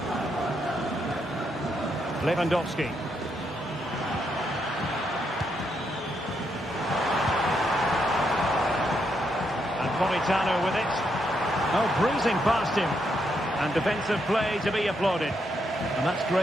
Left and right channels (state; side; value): normal; both; correlation 0.79